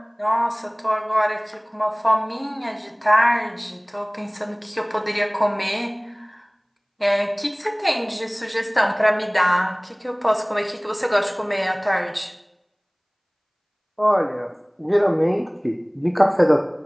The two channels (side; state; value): both; identical; correlation 1.00